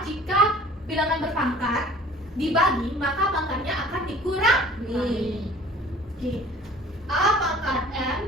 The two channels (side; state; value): both; normal; correlation 0.49